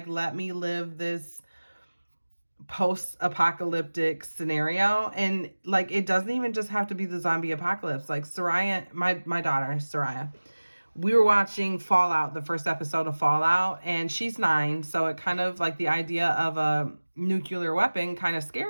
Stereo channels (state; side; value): inverted; both; correlation -1.00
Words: let me live this post-apocalyptic scenario. And like, it doesn't even just have to be the zombie apocalypse. Like Soraya, my daughter Soraya, we were watching Fallout, the first episode of Fallout, and she's 9, so it kind of like the idea of a nuclear weapon kind of